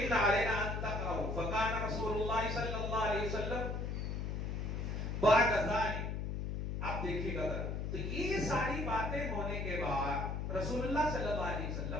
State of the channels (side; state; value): left; noise; hum, 2 dB below the sound